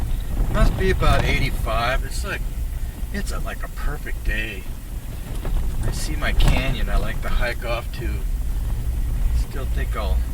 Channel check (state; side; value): identical; both; correlation 1.00